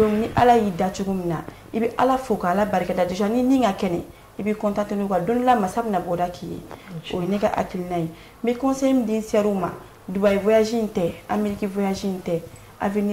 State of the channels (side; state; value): both; identical; correlation 1.00